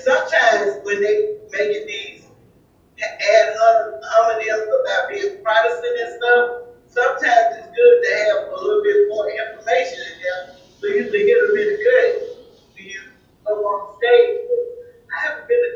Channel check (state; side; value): identical; both; correlation 1.00